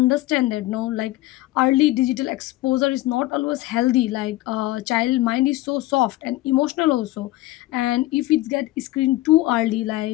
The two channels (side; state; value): right; quieter; 17.6 dB